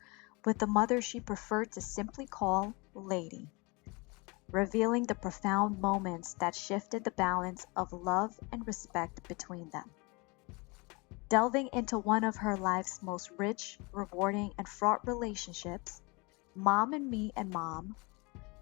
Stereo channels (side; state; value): right; quieter; 27.6 dB